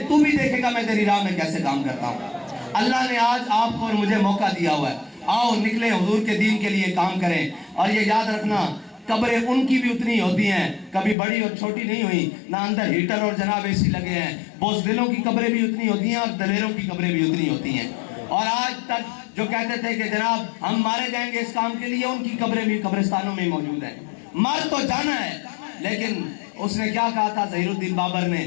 تو بھی دیکھے گا میں تیری راہ میں کیسے کام کرتا ہوں. اللہ نے آج آپ کو اور مجھے موقع دیا ہوا ہے, آؤ نکلیں حضور کے دین کے لیے کام کریں. اور یہ یاد رکھنا قبریں ان کی بھی اتنی ہوتی ہیں, کبھی بڑی اور چھوٹی نہیں ہوئی, نہ اندر ہیٹر اور جناب اے سی لگے ہیں. بزدلوں کی قبریں بھی اتنی ہوتی ہیں اور دلیروں کی قبریں بھی اتنی ہوتی ہیں. اور آج تک جو کہتے تھے کہ جناب ہم مارے جائیں گے اس کام کے لیے, ان کی قبریں بھی قبرستانوں میں موجود ہیں. مر تو جانا ہے, لیکن اس نے کیا کہا تھا ظہیر الدین بابر نے,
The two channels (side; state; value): right; drops out; at 11.2 s